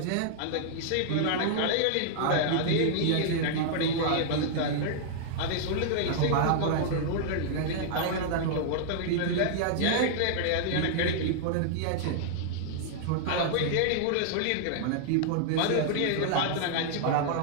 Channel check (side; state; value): both; different; correlation -0.01